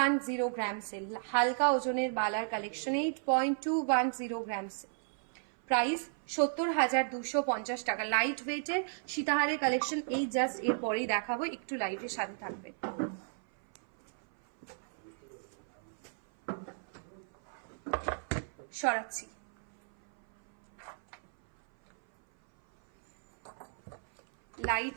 গ্রামস এর হালকা ওজনের বালার কালেকশন। 8.210 গ্রামস। প্রাইস 70,250 টাকা। লাইট ওয়েটের সীতাহারের কালেকশন এই জাস্ট এরপরেই দেখাবো, একটু লাইটের সাথে থাকবে। সরাচ্ছি। লাইট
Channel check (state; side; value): silent; left; 55 dB below the other